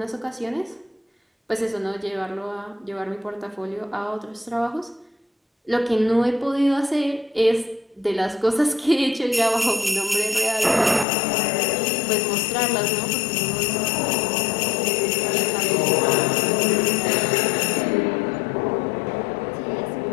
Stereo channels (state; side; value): drops out; right; at 11.1 s